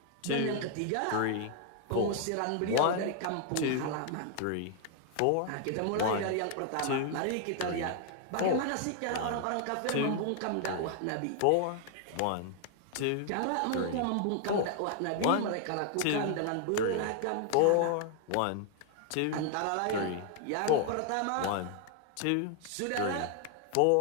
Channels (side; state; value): both; different; correlation 0.00